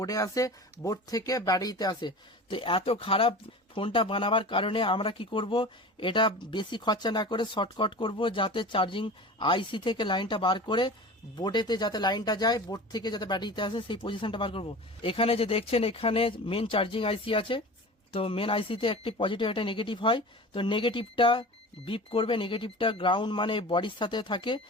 আসে, বোর্ড থেকে ব্যাটারিতে আসে। তো এত খারাপ ফোনটা বানাবার কারণে আমরা কি করব, এটা বেশি খরচা না করে শর্টকাট করব, যাতে চার্জিং আইসি থেকে লাইনটা বার করে বোর্ডেতে যাতে লাইনটা যায়, বোর্ড থেকে যাতে ব্যাটারিতে আসে, সেই পজিশনটা বার করব। এখানে যে দেখছেন, এখানে মেন চার্জিং আইসি আছে। তো মেন আইসিতে একটি পজিটিভ একটা নেগেটিভ হয়। তো নেগেটিভটা বিপ করবে, নেগেটিভটা গ্রাউন্ড মানে বডির সাথে থাকে,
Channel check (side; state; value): both; normal; correlation 0.35